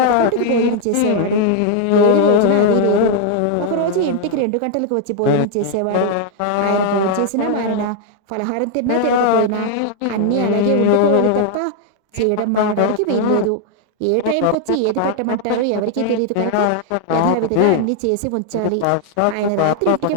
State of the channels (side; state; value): both; different; correlation 0.00